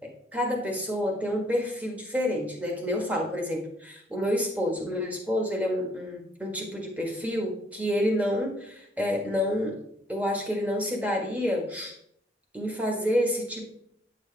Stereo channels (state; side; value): normal; both; correlation 0.65